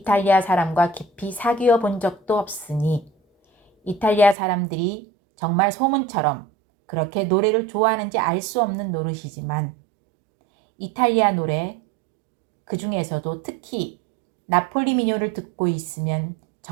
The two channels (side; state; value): left; drops out; at 4.4 s